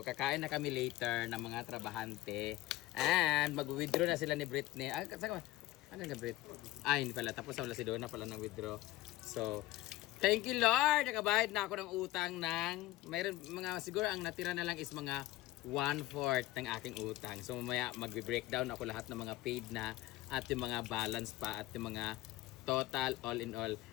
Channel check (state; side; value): quieter; right; 17.2 dB